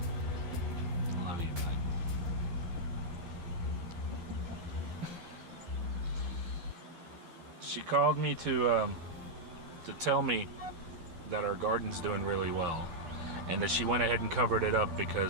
She called me to tell me that our garden's doing really well, and that she went ahead and covered it up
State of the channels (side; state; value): left; late; 12 ms